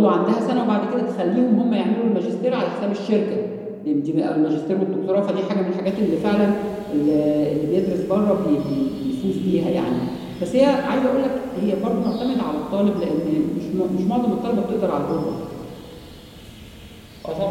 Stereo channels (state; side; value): identical; both; correlation 1.00